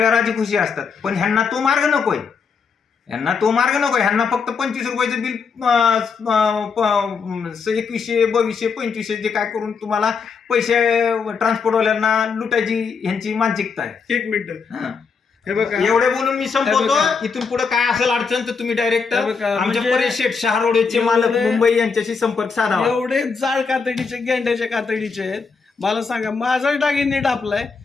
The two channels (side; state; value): right; quieter; 5.4 dB